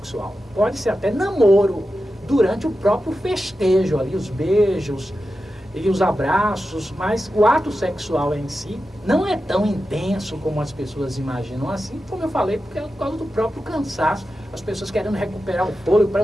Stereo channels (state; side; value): normal; both; correlation 0.91